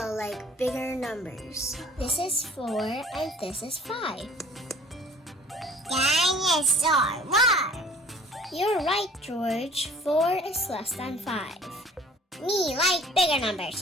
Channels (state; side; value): normal; both; correlation 0.52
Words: like bigger numbers. This is 4 and this is 5. Dinosaur, what? You're right, George. 4 is less than 5. Me like bigger numbers,